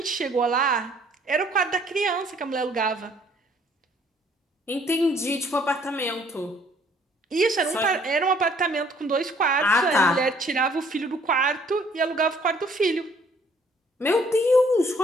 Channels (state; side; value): normal; both; correlation 0.61